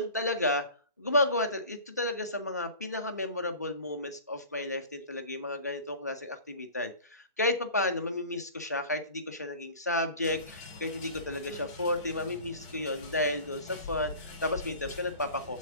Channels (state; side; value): inverted; both; correlation -0.41